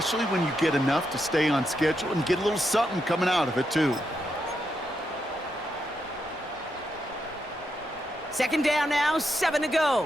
when you get enough to stay on schedule and get a little something coming out of it, too. 2nd down now, 7 to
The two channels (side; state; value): both; normal; correlation 0.83